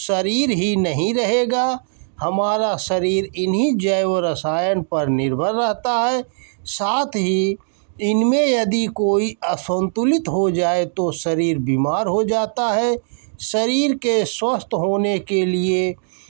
ही नहीं रहेगा। हमारा शरीर इन्हीं जैव रसायन पर निर्भर रहता है। साथ ही इनमें यदि कोई असंतुलित हो जाए तो शरीर बीमार हो जाता है। शरीर के स्वस्थ होने के लिए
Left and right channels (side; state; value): left; silent; digital silence